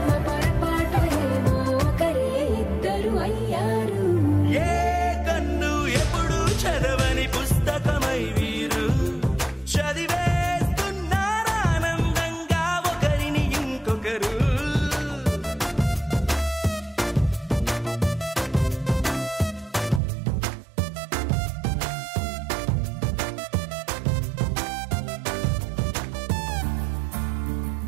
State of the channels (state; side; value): drops out; left; at 20.0 s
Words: పొరపాటు ఏమో ఒకరే ఇద్దరు అయ్యారు ఏ కన్ను ఎప్పుడు చదవని పుస్తకమై వీరు చదివేస్తున్నారానందంగా ఒకరిని ఇంకొకరు